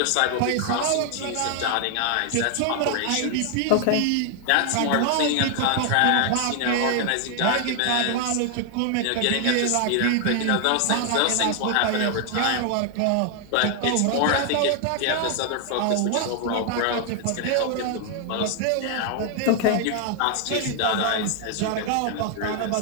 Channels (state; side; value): different; both; correlation 0.00